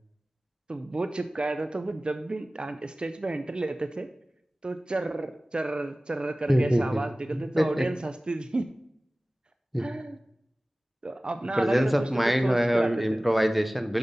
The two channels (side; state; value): both; normal; correlation 0.98